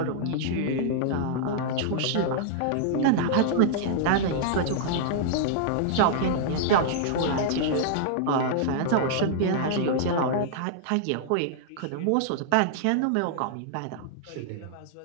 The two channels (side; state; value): both; different; correlation -0.01